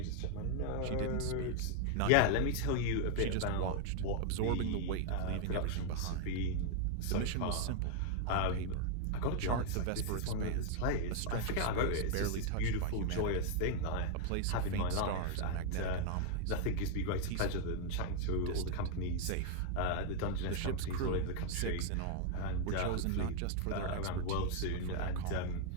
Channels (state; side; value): different; both; correlation 0.00